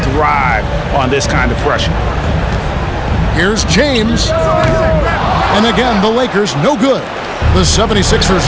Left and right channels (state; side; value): identical; both; correlation 1.00